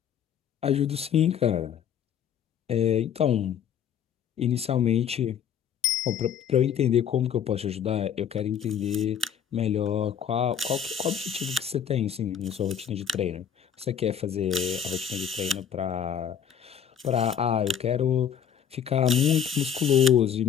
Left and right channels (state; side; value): quieter; right; 8.4 dB